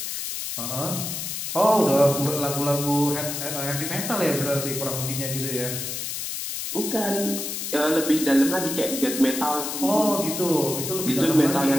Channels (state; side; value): noise; left; hiss, 5 dB below the sound